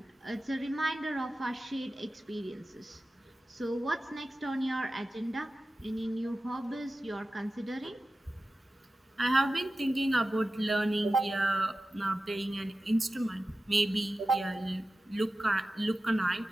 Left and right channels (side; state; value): both; normal; correlation 0.94